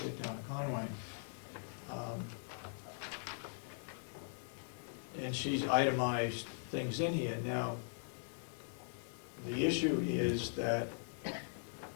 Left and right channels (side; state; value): right; silent; 51 dB below the other